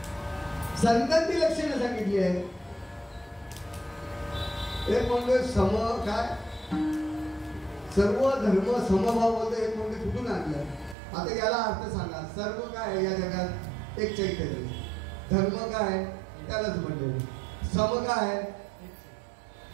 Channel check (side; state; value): left; drops out; at 11.0 s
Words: संतांची लक्षणं सांगितली आहे. एक म्हणजे सम काय सर्व धर्म समभाव बोलतो. एक म्हणजे कुठून आणलं? आता याला अर्थ सांगा. सर्व काय आहे या जगात? एक चैतन्य. धर्म काय? त्यालाच म्हणलं. सम काय?